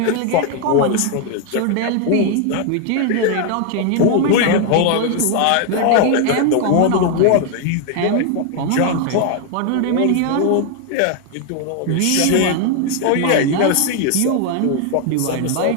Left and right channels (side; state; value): both; different; correlation 0.01